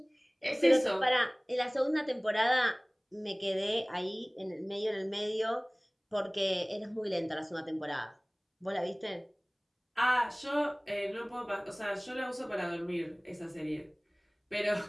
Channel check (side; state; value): both; identical; correlation 1.00